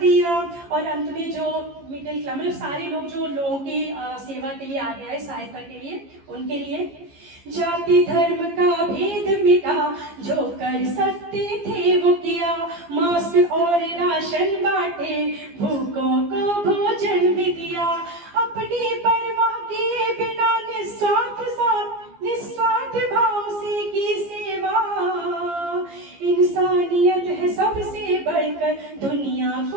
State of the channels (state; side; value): late; left; 15 ms